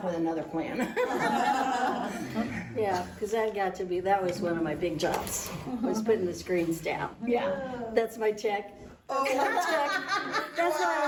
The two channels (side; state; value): both; identical; correlation 1.00